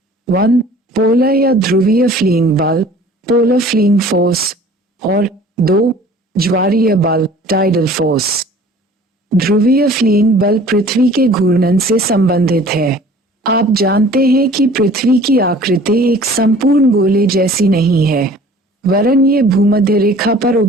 1. पोलर या ध्रुवीय फ्लीइंग बल पोलर फ्लीइंग फोर्स और 2. ज्वारीय बल टाइडल फोर्स। ध्रुवीय फ्लीइंग बल पृथ्वी के घूर्णन से संबंधित है। आप जानते हैं कि पृथ्वी की आकृति एक संपूर्ण गोले जैसी नहीं है, वरन ये भूमध्य रेखा पर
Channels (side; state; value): both; normal; correlation 0.48